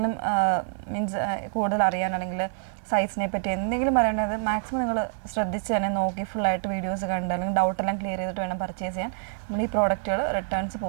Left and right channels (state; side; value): silent; left; digital silence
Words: മീൻസ് കൂടുതൽ അറിയാൻ അല്ലെങ്കിൽ സൈസിനെ പറ്റി എന്തെങ്കിലും പറയേണ്ടത് മാക്സിമം നിങ്ങൾ ശ്രദ്ധിച്ച് തന്നെ നോക്കി ഫുള്ളായിട്ട് വീഡിയോസ് കണ്ട് അല്ലെങ്കിൽ ഡൗട്ടെല്ലാം ക്ലിയർ ചെയ്തിട്ട് വേണം പർച്ചേസ് ചെയ്യാൻ. നമ്മൾ ഈ പ്രോഡക്റ്റുകൾ റിട്ടേൺസ്